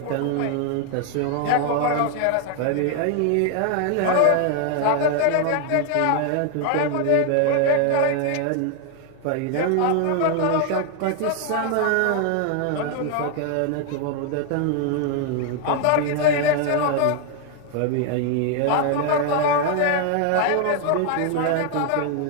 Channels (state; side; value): different; both; correlation 0.00